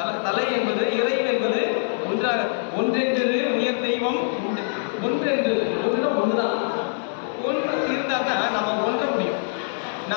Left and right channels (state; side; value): silent; right; 63 dB below the other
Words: தலை என்பது இறைவன் என்பது ஒன்றாக. ஒன்றென்று உயர் தெய்வம் ஒன்றென்று ஒன்றுதான். ஒன்று இருந்தால் தான் நம்ம ஒன்ற முடியும்.